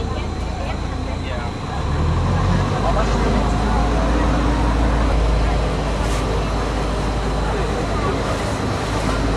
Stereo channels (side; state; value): both; identical; correlation 1.00